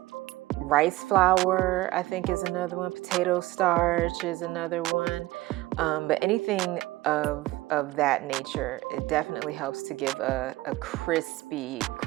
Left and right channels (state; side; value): quieter; left; 18.4 dB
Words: rice flour, I think is another one, potato starch is another one, but anything of that nature, it definitely helps to give a crispy,